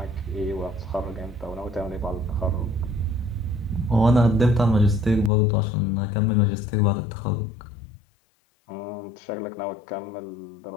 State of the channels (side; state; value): right; drops out; at 5.3 s